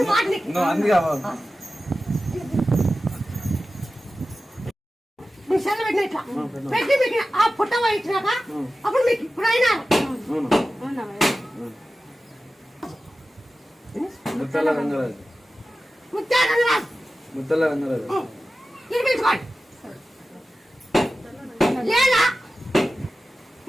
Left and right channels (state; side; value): normal; both; correlation 0.94